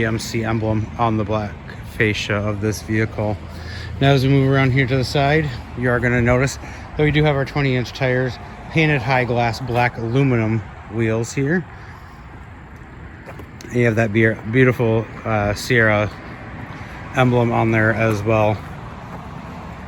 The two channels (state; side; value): identical; both; correlation 1.00